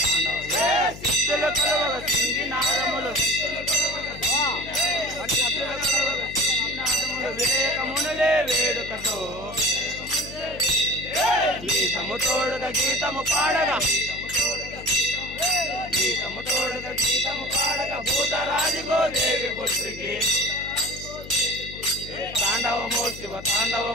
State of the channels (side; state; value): left; noise; hum, 14 dB below the sound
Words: తాండవమో సిద్ధులు కలవగ సింగినాదములు వివేకమునులే వేడుకతో గీతము తోడుగా గీతము పాడగా గీతము తోడుగా గీతము పాడగా భూతరాజుగో దేవి పుత్రికి తాండవమో శివ